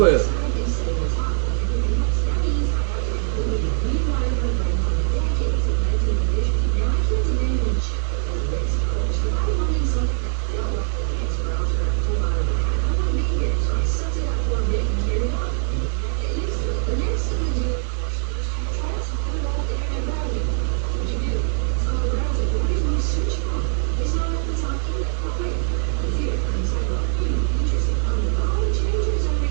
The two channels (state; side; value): silent; left; 56 dB below the other